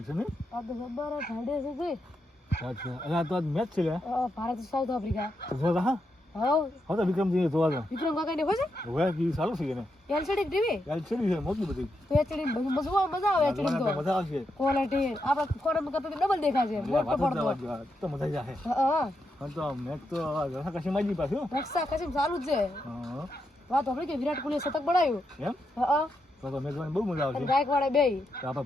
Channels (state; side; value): normal; both; correlation 0.83